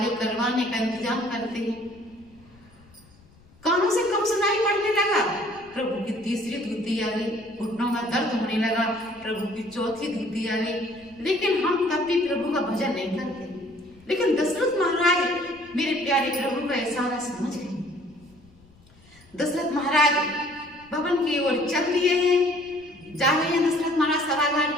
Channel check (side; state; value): left; noise; rumble, 27 dB below the sound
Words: करवाने का इंतजाम करते हैं। कानों से कम सुनाई पड़ने लगा, प्रभु की तीसरी धुती आ गई। घुटनों में दर्द होने लगा, प्रभु की चौथी धुती आ गई। लेकिन हम तब भी प्रभु का भजन नहीं करते। लेकिन दशरथ महाराज मेरे प्यारे प्रभु का इशारा समझ गए। दशरथ महाराज भवन की ओर चल दिए हैं, जा रहे हैं दशरथ महाराज सभागार